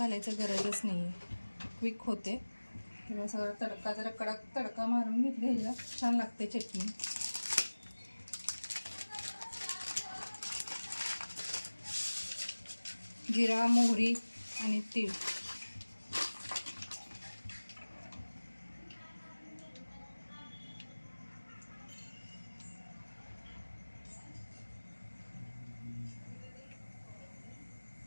गरजच नाही आहे, क्विक होते. तेव्हा सगळं तडका जरा कडक तडका मारून घेतले, ह्याला छान लागते चटणी. जिरा मोहरी आणि तीळ,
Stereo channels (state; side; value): inverted; both; correlation -1.00